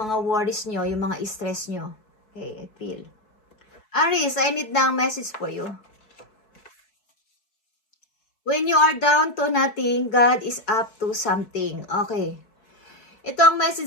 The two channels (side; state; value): right; late; 4.6 ms